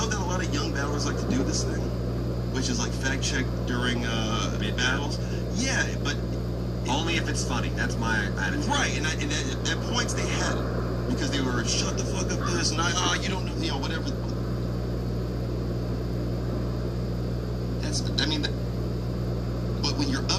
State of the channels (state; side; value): identical; both; correlation 1.00